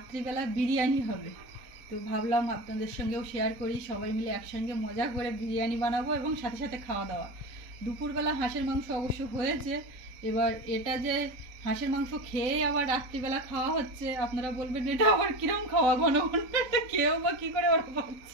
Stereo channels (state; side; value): late; left; 3.9 ms